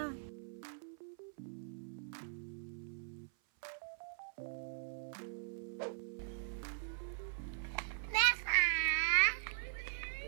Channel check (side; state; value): left; silent; 50 dB below the other